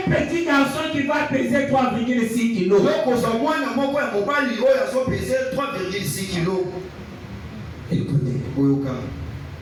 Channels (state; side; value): identical; both; correlation 1.00